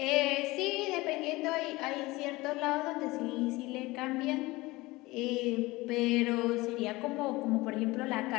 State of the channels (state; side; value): quieter; right; 21.0 dB